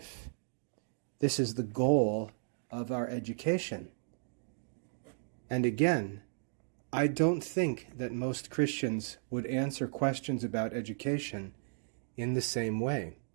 This is the goal of our education. And again, I don't think that most Christians would answer questions about education in the same way.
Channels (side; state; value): left; silent; digital silence